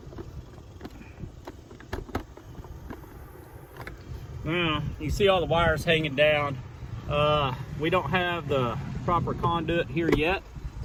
Now, you see all the wires hanging down. We don't have the proper conduit here yet,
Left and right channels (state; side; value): identical; both; correlation 1.00